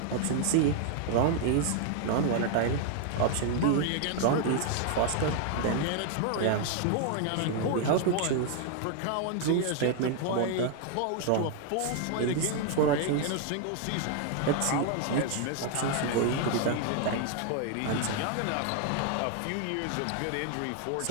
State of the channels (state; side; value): different; both; correlation 0.00